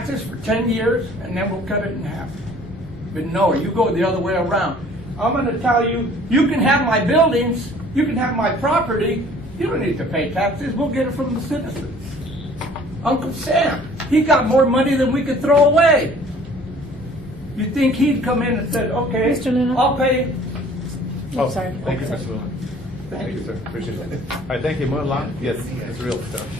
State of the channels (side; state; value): both; normal; correlation 0.52